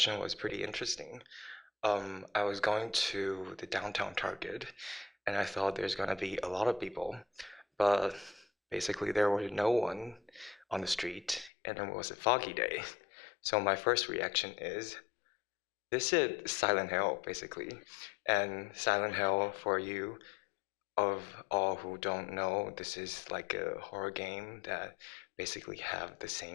was pretty interesting. I was going to the downtown Target and I thought there's gonna be a lot of people, but basically there was no one on the street and it was a foggy day. So my first reaction is, this is Silent Hill, basically. And Silent Hill, for you of all who don't know, this is like a horror game that basically have the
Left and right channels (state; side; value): drops out; right; at 11.5 s